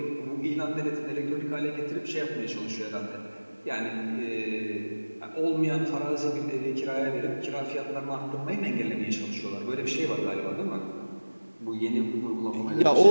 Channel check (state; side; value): inverted; both; correlation -1.00